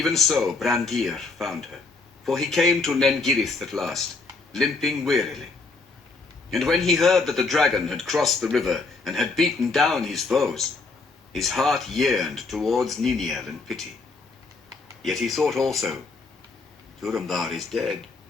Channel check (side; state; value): right; quieter; 3.9 dB